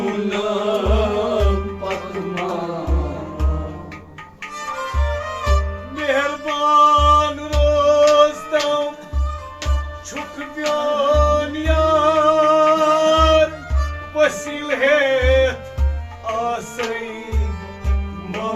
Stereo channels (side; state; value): both; identical; correlation 1.00